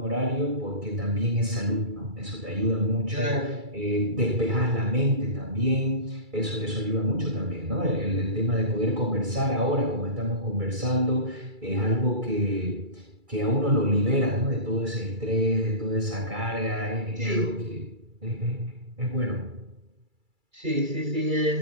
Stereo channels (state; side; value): late; left; 2.3 ms